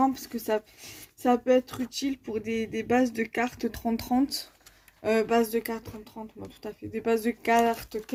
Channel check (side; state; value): both; identical; correlation 1.00